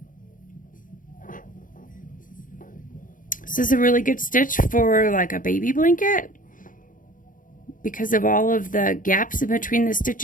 This is a really good stitch for like a baby blanket because of all of the gaps in between the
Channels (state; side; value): late; right; 0.39 ms